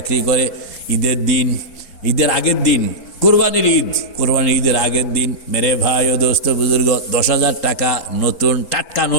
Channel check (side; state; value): right; late; 3.8 ms